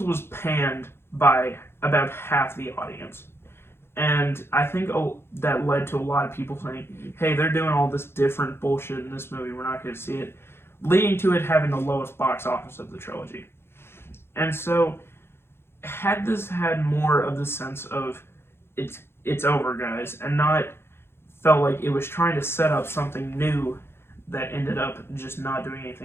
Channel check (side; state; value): right; late; 0.12 ms